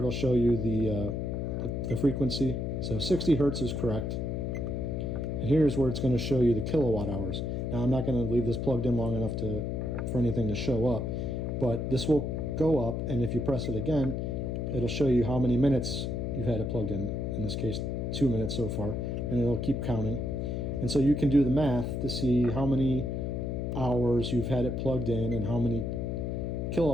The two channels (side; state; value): left; noise; hum, 2 dB below the sound